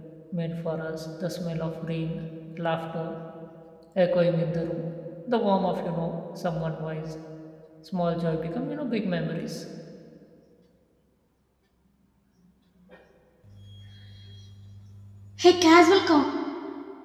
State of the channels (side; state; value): both; identical; correlation 1.00